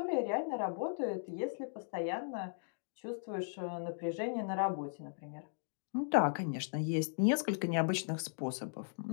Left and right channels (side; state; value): right; silent; digital silence